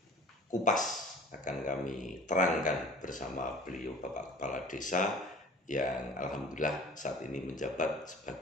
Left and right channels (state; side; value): normal; both; correlation 0.44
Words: kupas, akan kami terangkan bersama beliau Bapak Kepala Desa yang alhamdulillah saat ini menjabat